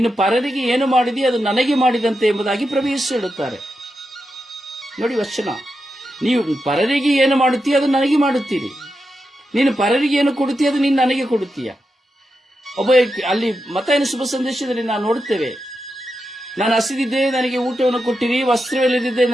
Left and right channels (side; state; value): both; normal; correlation 0.88